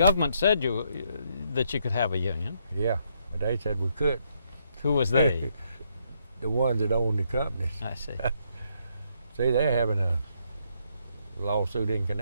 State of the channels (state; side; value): inverted; both; correlation -0.74